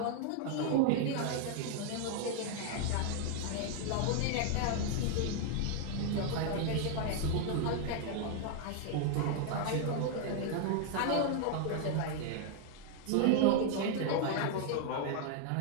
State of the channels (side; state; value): both; different; correlation 0.00